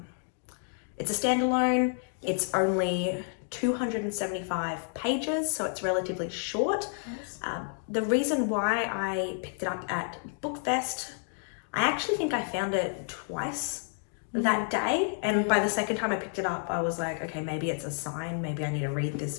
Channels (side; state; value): right; silent; 58 dB below the other